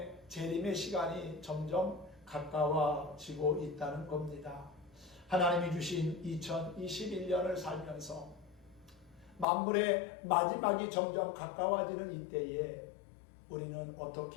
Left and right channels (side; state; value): right; drops out; at 9.5 s